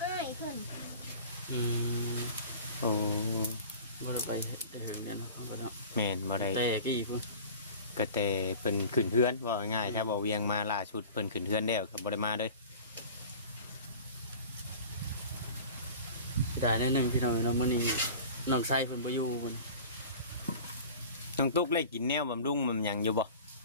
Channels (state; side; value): inverted; both; correlation -0.40